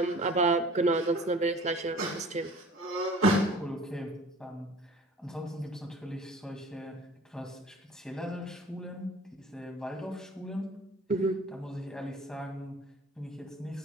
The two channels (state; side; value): normal; both; correlation 0.45